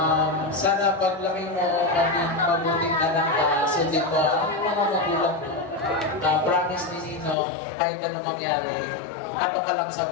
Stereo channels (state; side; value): drops out; right; at 7.4 s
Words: Sana paglaki mo, maging mabuting anak ka, sundin mo ang mga magulang mo. Promise ni Nino, kahit ano mangyari, ato ka lang sa